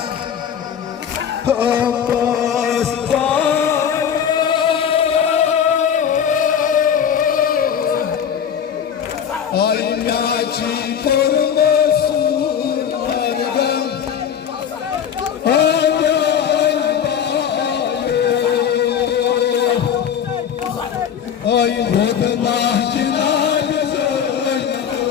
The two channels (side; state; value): right; quieter; 8.3 dB